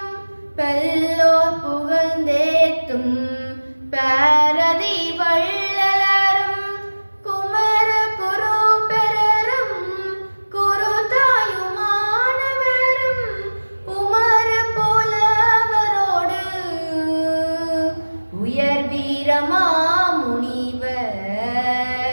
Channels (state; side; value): inverted; both; correlation -1.00